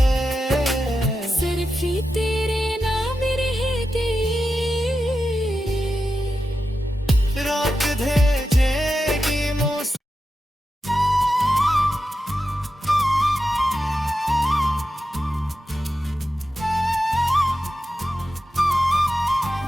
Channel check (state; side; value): normal; both; correlation 0.90